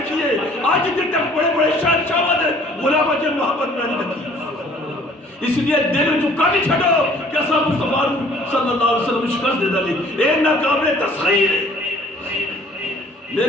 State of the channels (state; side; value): normal; both; correlation 0.55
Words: آج جتنے تک بڑے بڑے شہنشاہ والے غلام جن محبت میں نہیں دیکھی اس لیے دل چکا نہیں چھڑو کہ ایسا مصطفیٰ صلی اللہ علیہ وسلم شکست دے دلی اے ناقابل تسخیر